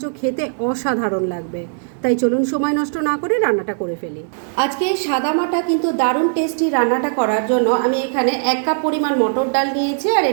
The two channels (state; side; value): silent; left; digital silence